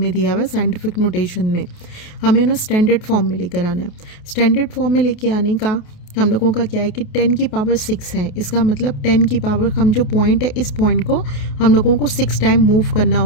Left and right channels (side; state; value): right; late; 28 ms